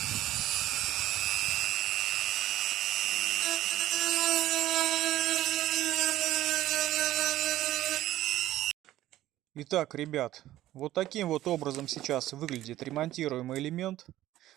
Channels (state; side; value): quieter; left; 14.4 dB